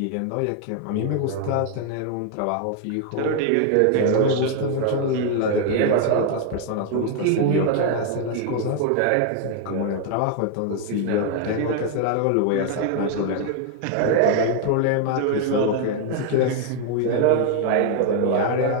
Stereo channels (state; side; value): different; both; correlation 0.00